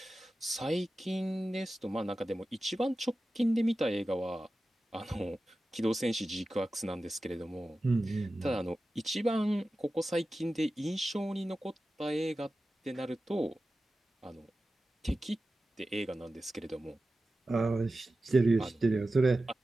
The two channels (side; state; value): both; normal; correlation 0.94